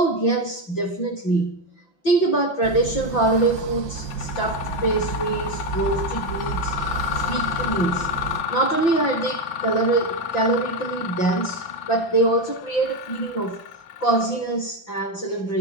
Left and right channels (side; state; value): right; late; 5.9 ms